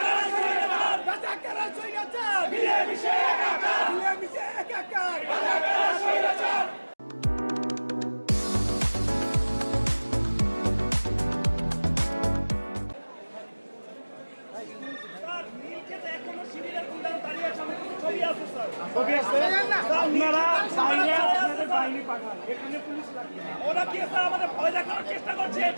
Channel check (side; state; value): both; inverted; correlation -1.00